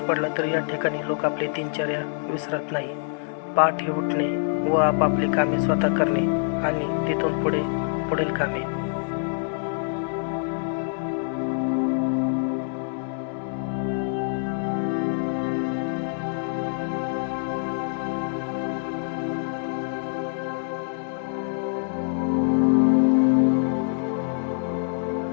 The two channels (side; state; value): right; silent; digital silence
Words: पडला तरी या ठिकाणी लोक आपली दिनचर्या विसरत नाही. पहाटे उठणे व आपापली कामे स्वतः करणे आणि तिथून पुढील कामे.